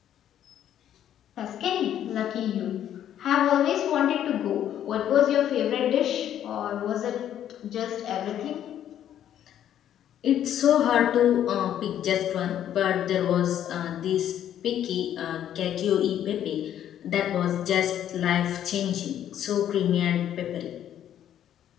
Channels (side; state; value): right; quieter; 10.6 dB